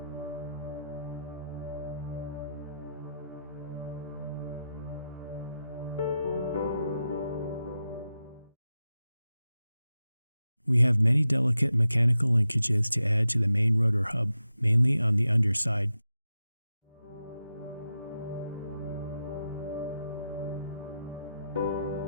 We have many delicate mechanical linkages to add to the main rotor hub, mainly on the underside.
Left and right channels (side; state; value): both; inverted; correlation -0.89